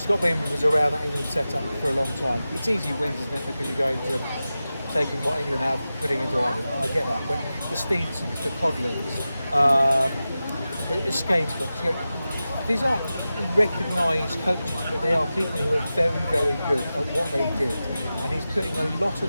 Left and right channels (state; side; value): inverted; both; correlation -0.94